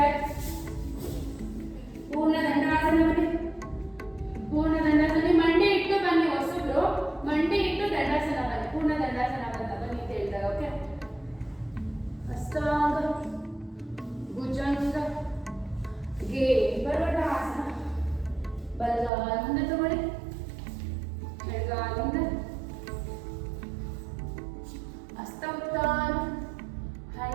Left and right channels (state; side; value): drops out; left; at 19.1 s